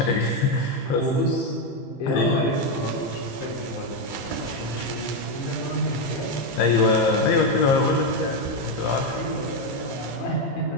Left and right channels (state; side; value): late; right; 15 ms